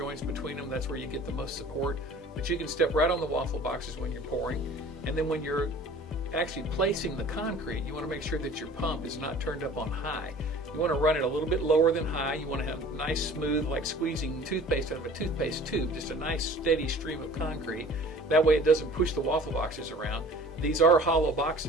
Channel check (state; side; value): normal; both; correlation 0.47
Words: between them. That's where you get the most support. But you can step right on the waffle boxes when you're pouring. And then when you're actually placing the concrete, you want to make sure that your pump is not turned up on high. You want to run it a little bit lower than high. You want to have nice, smooth, like squeezing toothpaste out of a toothpaste tube, just a nice steady stream of concrete. That way it doesn't push the waffle boxes around. These are hollow